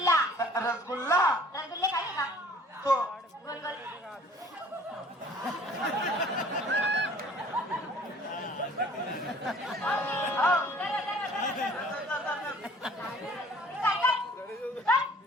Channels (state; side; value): normal; both; correlation 0.53